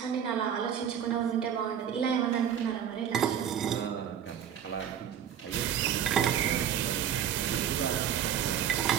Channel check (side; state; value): left; quieter; 9.2 dB